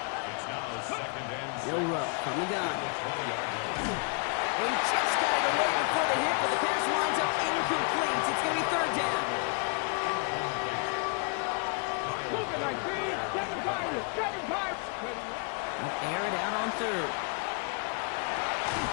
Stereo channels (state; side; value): quieter; right; 37.6 dB